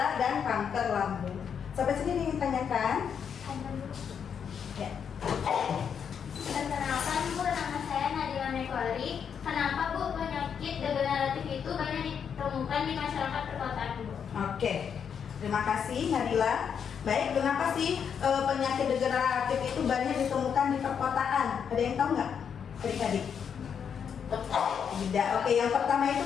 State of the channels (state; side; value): quieter; right; 7.4 dB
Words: dan kanker lambung. Sampai sini ingin tanyakan? Ya. Perkenalkan Bu, nama saya Nadila Mekwari. Kenapa Bu penyakit degeneratif itu banyak ditemukan di masyarakat perkotaan Bu? Oke, terima kasih Nadila. Baik, kenapa sih penyakit degeneratif itu banyak ditemukan di perkotaan? Ada yang tahu nggak? Adik-adik? Tidak. Oke, yang pertama itu